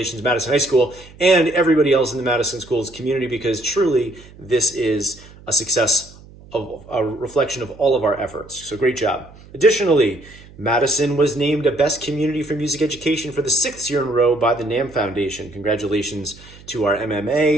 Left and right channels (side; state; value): right; noise; hum, 21 dB below the sound